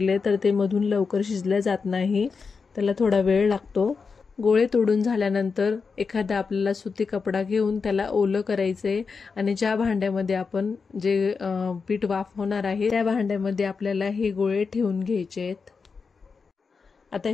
तर ते मधून लवकर शिजले जात नाही, त्याला थोडा वेळ लागतो। गोळे तोडून झाल्यानंतर एखादा आपल्याला सुती कपडा घेऊन त्याला ओलं करायचंय आणि ज्या भांड्यामध्ये आपण जे पीठ वाफवणार आहे त्या भांड्यामध्ये आपल्याला हे गोळे ठेवून घ्यायचे आहेत। आता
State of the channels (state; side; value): quieter; right; 5.1 dB